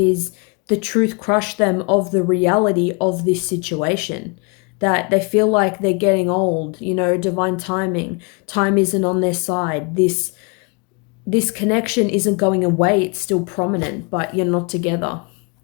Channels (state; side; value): quieter; right; 32.5 dB